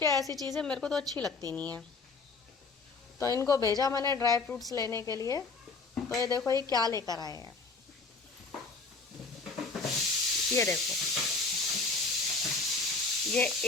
ऐसी चीज़ें मेरे को तो अच्छी लगती नहीं है। तो इनको भेजा मैंने ड्राई फ्रूट्स लेने के लिए। तो ये देखो ये क्या लेकर आए हैं, ये देखो, ये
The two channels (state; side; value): quieter; right; 4.1 dB